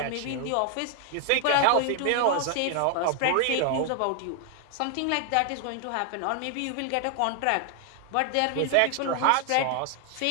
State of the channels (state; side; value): different; both; correlation 0.00